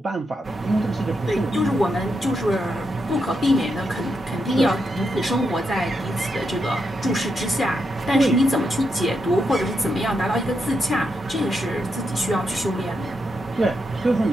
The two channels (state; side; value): normal; both; correlation 0.83